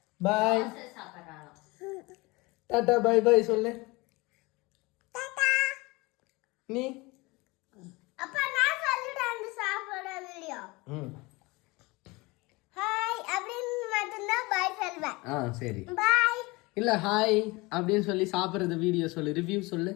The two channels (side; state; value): right; quieter; 24.1 dB